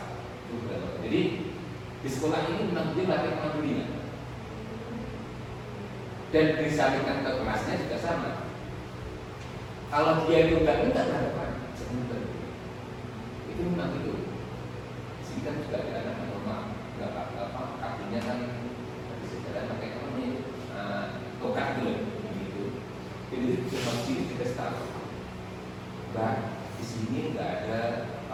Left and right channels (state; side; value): identical; both; correlation 1.00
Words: Jadi di sekolah ini memang dia latih kemandirian. Dan disampaikan ke kelasnya juga sama. Kalau dia itu nggak minta harapan, sebentar. Itu memang itu. Sini kan juga ada anak normal, nggak apa-apa, kakinya kan bisa jalan pakai apa nih, tokat dulu, gitu. Jadi cuma sini kita tahu. Bah, di sini nggak ada